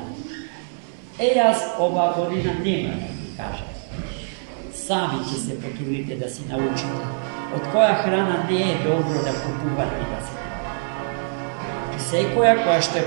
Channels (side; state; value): left; silent; 63 dB below the other